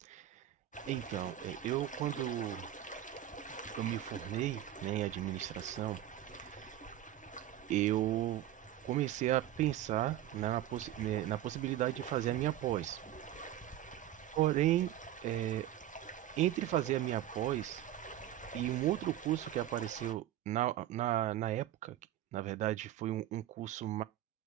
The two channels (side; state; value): left; quieter; 12.5 dB